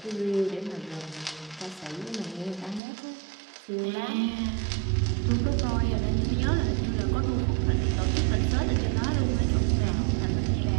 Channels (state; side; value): drops out; left; at 2.8 s